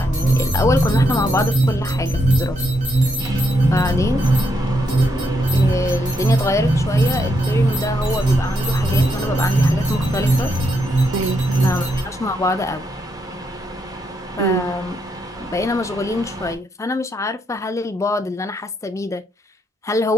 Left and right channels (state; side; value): normal; both; correlation 0.79